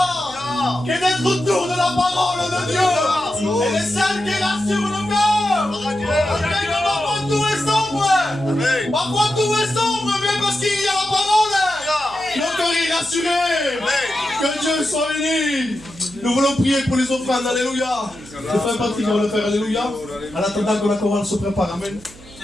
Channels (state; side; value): noise; right; hum, 21 dB below the sound